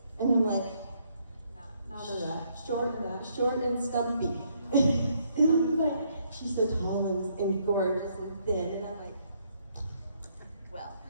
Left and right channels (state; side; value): inverted; both; correlation -0.71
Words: and I'm like, not enough, short and stumpy. And I'm like, she's so tall and gorgeous and thin, and I'm like, well,